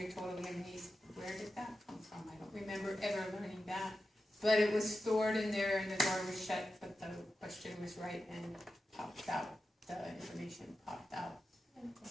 totally amazed. Where did that come from? I don't remember ever learning that. But it was stored in there and the door was shut, but the question was right and popped out. The information popped out.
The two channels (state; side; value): normal; both; correlation 0.91